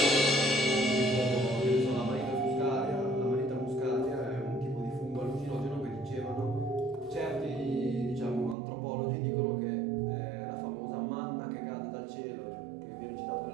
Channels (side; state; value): left; drops out; at 8.6 s